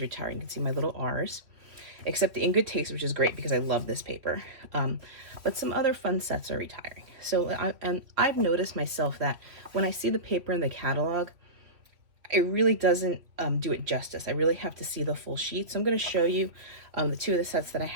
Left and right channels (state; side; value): late; left; 2.9 ms